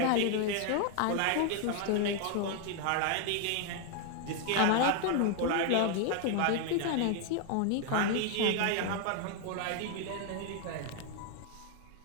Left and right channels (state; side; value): different; both; correlation 0.00